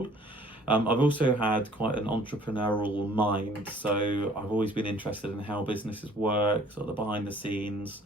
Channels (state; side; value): normal; both; correlation 0.55